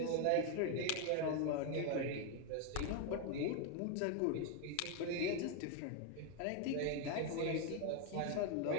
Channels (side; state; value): both; different; correlation 0.01